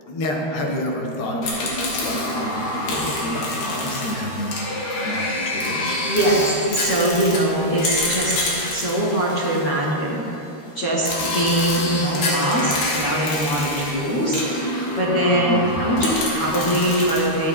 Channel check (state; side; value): late; right; 13 ms